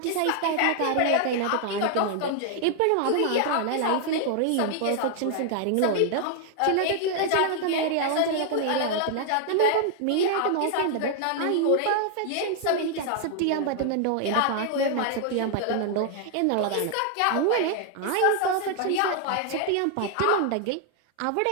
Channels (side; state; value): both; different; correlation 0.00